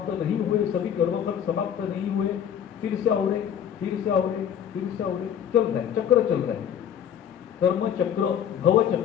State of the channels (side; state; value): right; quieter; 9.0 dB